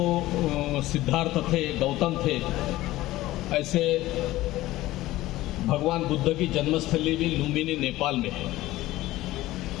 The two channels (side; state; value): right; quieter; 16.8 dB